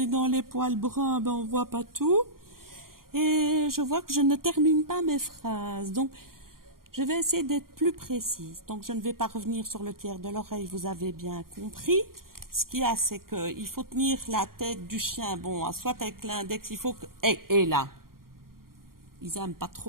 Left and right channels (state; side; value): late; left; 0.92 ms